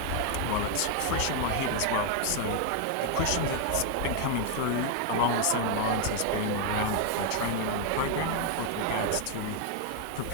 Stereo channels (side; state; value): both; different; correlation 0.00